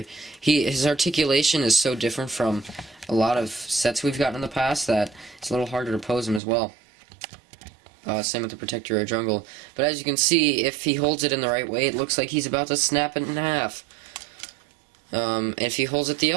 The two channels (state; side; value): drops out; left; at 6.4 s